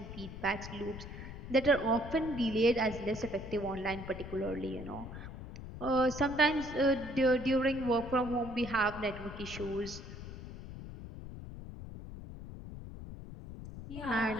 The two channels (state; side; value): noise; left; rumble, 11 dB below the sound